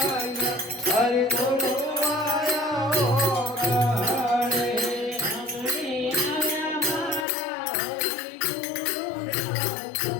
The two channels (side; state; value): right; drops out; at 7.2 s